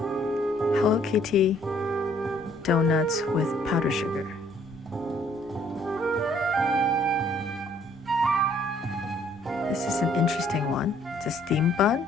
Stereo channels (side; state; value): both; normal; correlation 0.62